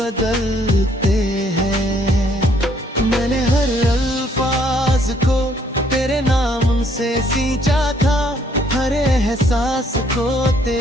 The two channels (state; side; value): normal; both; correlation 0.66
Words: हैं। मैंने हर अल्फाज को तेरे नाम से सींचा था, हर एहसास को